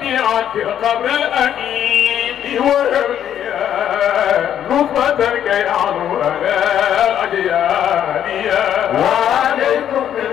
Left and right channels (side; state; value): right; quieter; 10.0 dB